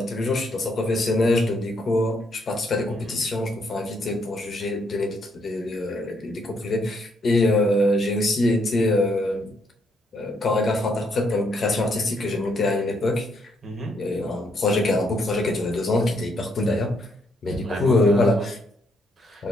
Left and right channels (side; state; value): both; normal; correlation 0.73